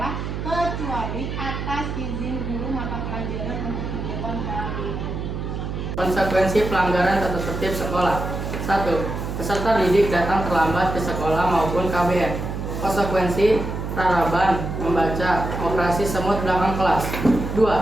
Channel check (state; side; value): noise; right; hum, 5 dB below the sound